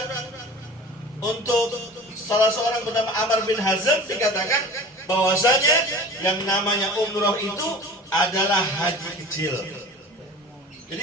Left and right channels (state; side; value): normal; both; correlation 0.39